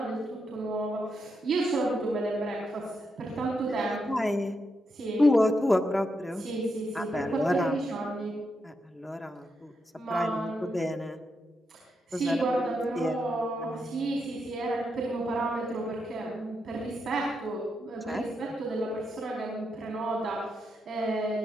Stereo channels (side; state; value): both; normal; correlation 0.83